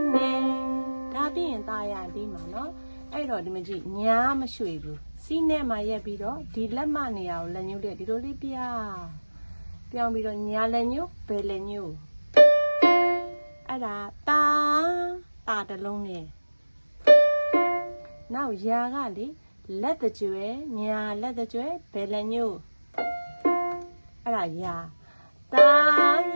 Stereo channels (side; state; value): both; inverted; correlation -1.00